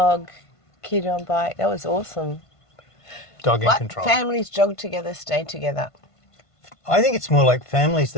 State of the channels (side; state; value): right; late; 1.5 ms